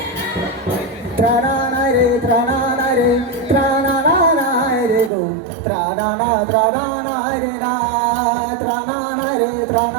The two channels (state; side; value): drops out; left; at 5.1 s